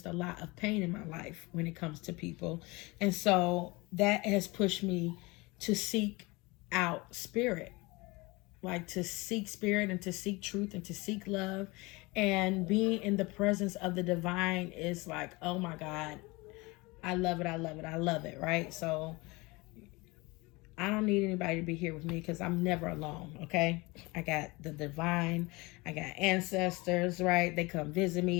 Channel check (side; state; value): right; quieter; 24.4 dB